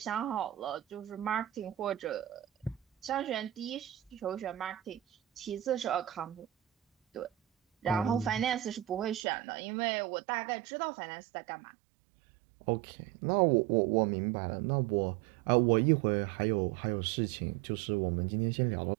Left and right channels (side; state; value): left; drops out; at 9.2 s